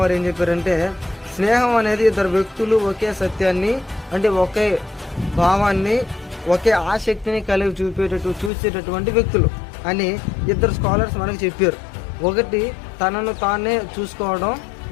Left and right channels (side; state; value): right; drops out; at 8.5 s